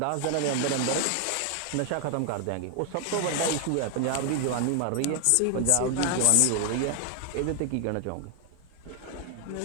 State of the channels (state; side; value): different; both; correlation 0.00